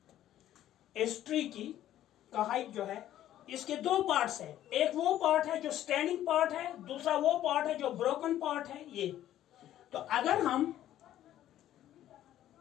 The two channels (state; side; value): quieter; right; 12.5 dB